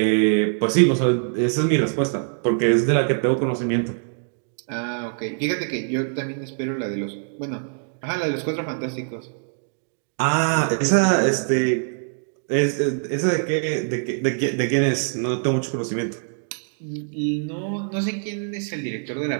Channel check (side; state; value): left; silent; digital silence